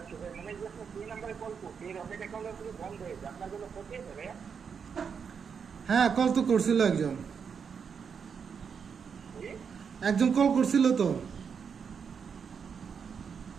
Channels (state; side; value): quieter; left; 6.5 dB